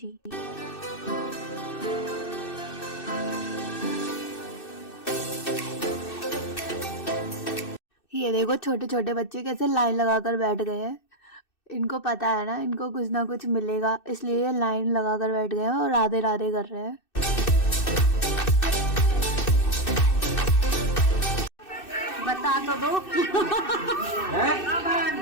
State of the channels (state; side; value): late; right; 2.6 ms